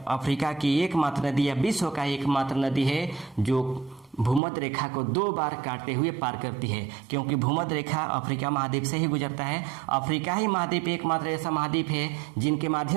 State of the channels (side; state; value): left; drops out; at 4.4 s